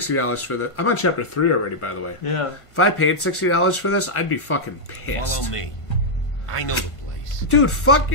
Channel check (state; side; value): late; right; 1.5 ms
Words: for this, I'm on chapter 3 already, by the way. Yeah. If I paid $60 for this, I'd be fucking pissed. Follow me. I know the place. Dude, fuck